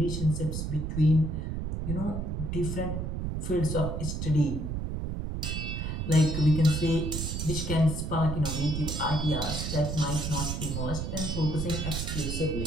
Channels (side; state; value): right; noise; rumble, 3 dB below the sound